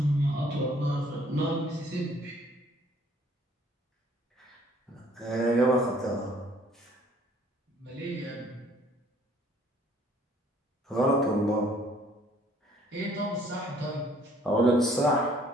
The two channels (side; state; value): both; normal; correlation 0.60